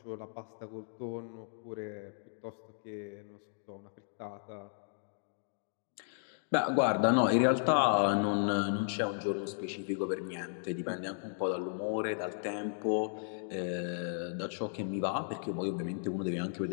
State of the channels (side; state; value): right; silent; digital silence